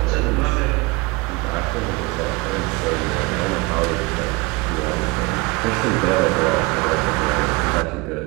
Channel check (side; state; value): left; quieter; 24.6 dB